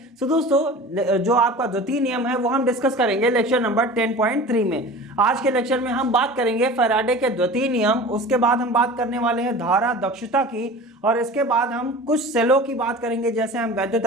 सो दोस्तों, जो आपका द्वितीय नियम है वो हम डिस्कस करेंगे लेक्चर नंबर 10.3 में। आज के लेक्चर में हम बात करेंगे फैराडे के द्वितीय नियम, उसके बाद हम बात करने वाले हैं धारा दक्षता की, और इसके बाद हम कुछ सेलों की बात करेंगे, जैसे हम वैद्युत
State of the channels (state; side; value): normal; both; correlation 0.38